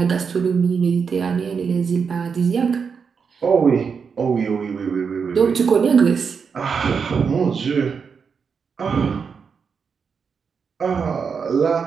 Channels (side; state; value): left; quieter; 6.0 dB